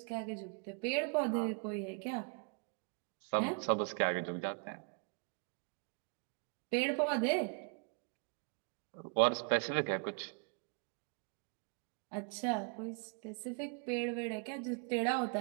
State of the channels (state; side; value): quieter; left; 38.3 dB